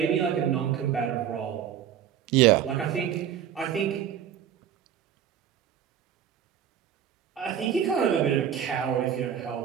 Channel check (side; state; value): left; quieter; 9.3 dB